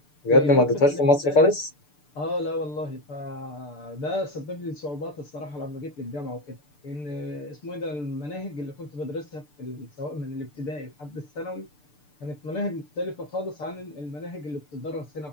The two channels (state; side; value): late; right; 6.8 ms